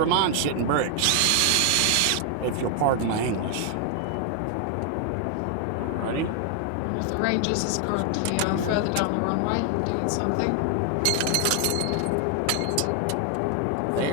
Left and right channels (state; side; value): different; both; correlation 0.00